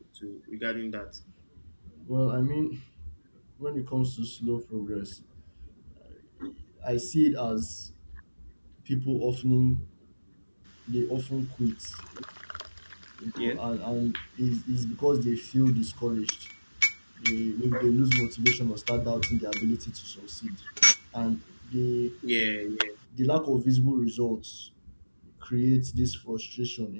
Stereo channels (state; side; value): inverted; both; correlation -1.00